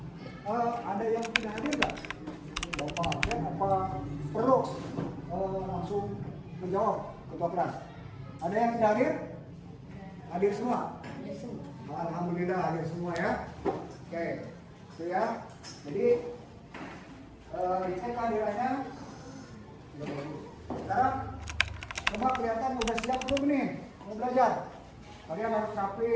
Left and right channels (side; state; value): both; identical; correlation 1.00